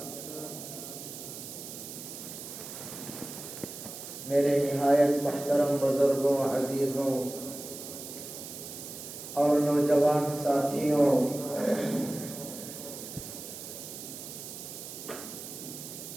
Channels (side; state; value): right; noise; hiss, 10 dB below the sound